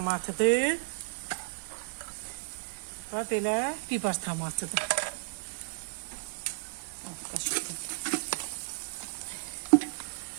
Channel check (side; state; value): left; silent; 56 dB below the other